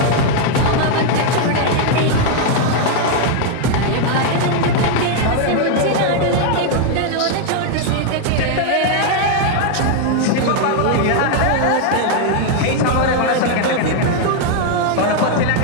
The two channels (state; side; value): different; both; correlation 0.00